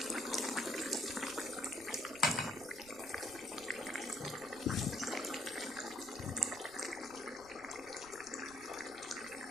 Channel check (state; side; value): noise; right; rumble, 20 dB below the sound